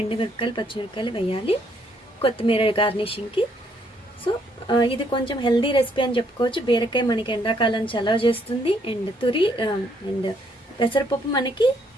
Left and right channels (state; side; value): normal; both; correlation 0.70